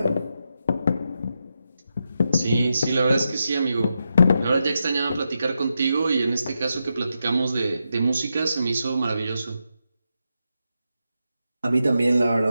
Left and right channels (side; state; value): both; inverted; correlation -0.86